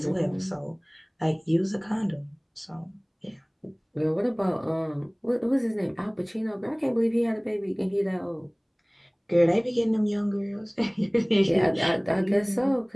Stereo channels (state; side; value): identical; both; correlation 1.00